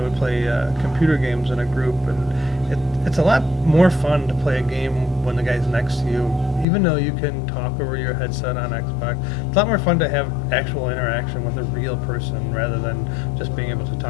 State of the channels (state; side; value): drops out; right; at 6.7 s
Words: play computer games in a group, and it's a lot more fun to play a game when the guy's next to you, even though you can talk over your headset on Xbox. It's a lot more fun to have actual interaction with a real person rather than just being able to